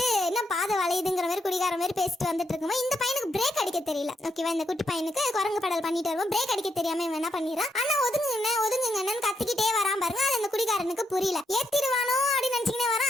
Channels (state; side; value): normal; both; correlation 0.80